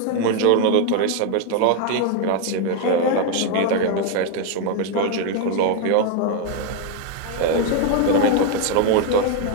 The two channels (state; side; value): different; both; correlation 0.01